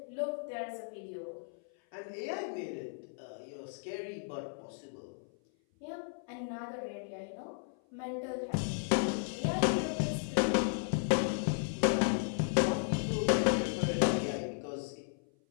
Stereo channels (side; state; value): right; silent; 54 dB below the other